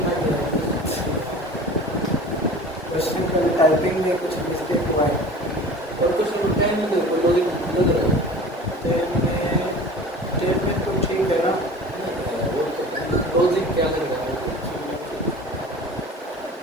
क्या है। क्वेश्चन का टाइपिंग में कुछ मिस्टेक हुआ है। और कुछ टेन में देखो लॉजिक लग रहा है। 10 में तो ठीक है ना। वो तो लॉजिक क्या लग रहा है?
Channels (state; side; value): normal; both; correlation 0.40